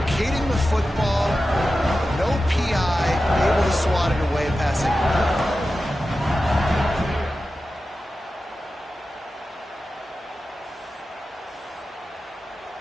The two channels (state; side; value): normal; both; correlation 0.93